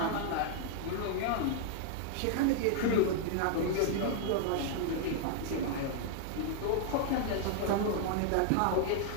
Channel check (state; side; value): different; both; correlation -0.01